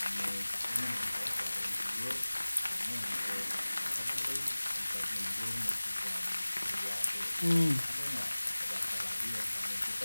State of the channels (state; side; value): inverted; both; correlation -1.00